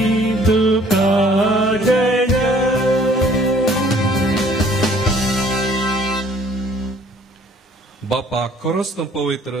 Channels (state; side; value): normal; both; correlation 0.57